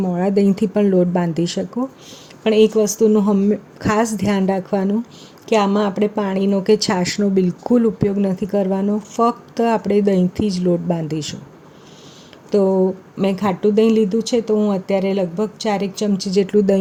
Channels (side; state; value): both; identical; correlation 1.00